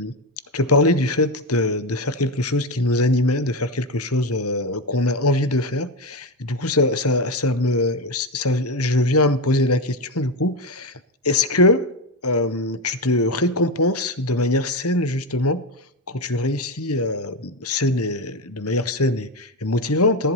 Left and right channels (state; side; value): normal; both; correlation 0.14